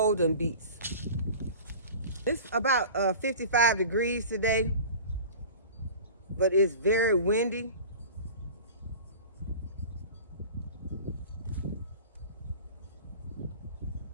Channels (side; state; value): both; inverted; correlation -0.39